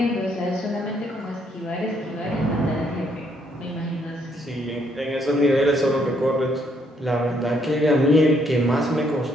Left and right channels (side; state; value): both; normal; correlation 0.71